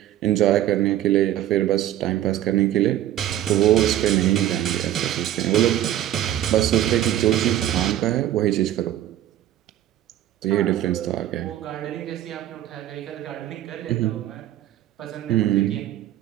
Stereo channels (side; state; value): left; quieter; 12.6 dB